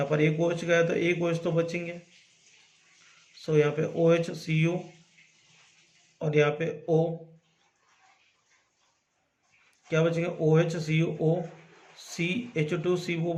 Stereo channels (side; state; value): both; identical; correlation 1.00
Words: पर एक OH गया तो एक OH तो बचेंगे। सो यहाँ पे OH Cu और यहाँ पे O क्या बचेंगे, OH CuO